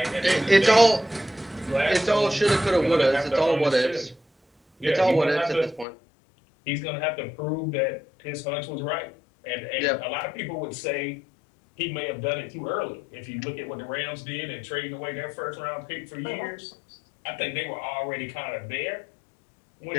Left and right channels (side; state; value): right; drops out; at 5.9 s